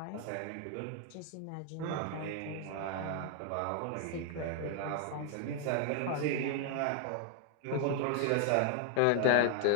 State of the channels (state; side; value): different; both; correlation 0.00